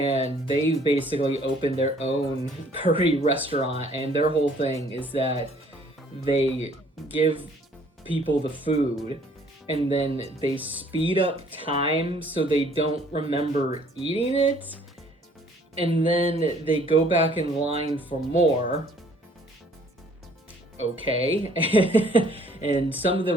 they basically opened their own curry restaurant, and their whole thing is that they give people the food and then they speed up time so they don't remember eating it, and then they go back in line for more. Okay. And some of the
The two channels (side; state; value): both; normal; correlation 0.59